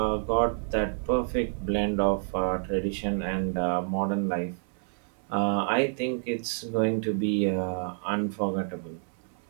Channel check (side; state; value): left; silent; 59 dB below the other